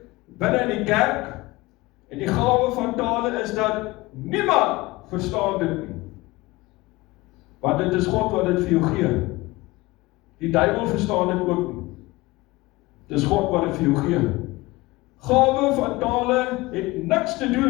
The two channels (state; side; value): quieter; right; 21.0 dB